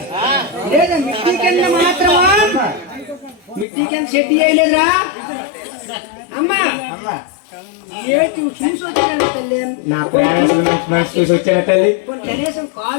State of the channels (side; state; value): right; drops out; at 3.7 s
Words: లేదా మిట్టి కింద మాత్రమా మిట్టి కింద సెట్ చేయలేదురా అమ్మా చూసి వచ్చాను తల్లి నా ప్రయాణం మనసు చూసి వచ్చాను తల్లి కనీసం